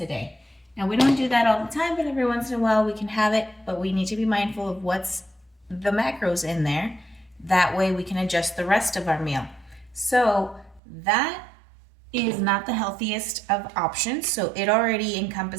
Now we don't do that all the time, but every once in a while we can have it, but we need to be mindful of what's the macros in there. That way we can adjust the rest of our meal. So that is not the healthiest of options, so it already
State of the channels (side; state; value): left; drops out; at 10.8 s